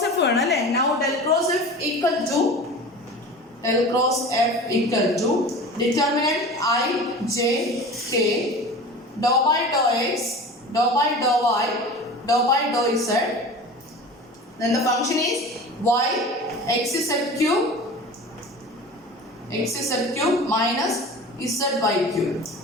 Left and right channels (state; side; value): normal; both; correlation 0.36